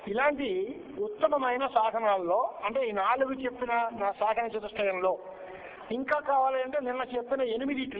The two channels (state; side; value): identical; both; correlation 1.00